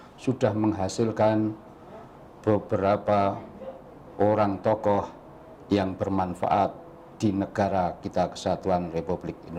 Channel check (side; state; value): both; identical; correlation 1.00